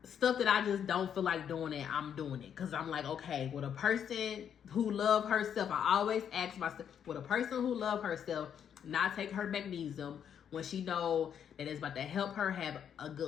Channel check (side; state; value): right; quieter; 8.5 dB